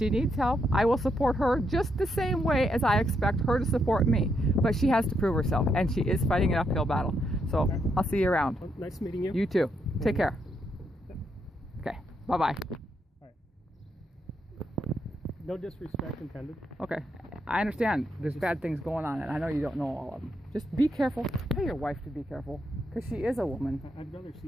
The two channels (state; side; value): normal; both; correlation 0.78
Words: needs help, I will support her just the same way as I expect her to support me. But she has to prove herself, and she is fighting an uphill battle. So okay. I'll see you around. Well, nice meeting you. You too. Take care. Okay. Bye-bye. All right. No disrespect intended. Okay. I understand there's bad things going on, and I know you don't know all of them. Just be careful. Tell your wife to be careful, because she is a woman. I'd rather